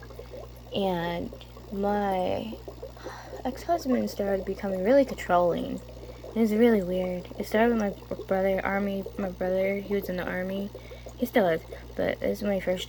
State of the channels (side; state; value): both; identical; correlation 1.00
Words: and my ex-husband started becoming really controlling. It was really weird. It started with my brother, he was in the army. He still is, but this is when he